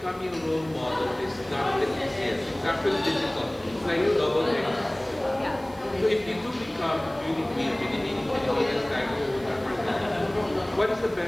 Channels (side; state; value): right; noise; hiss, 25 dB below the sound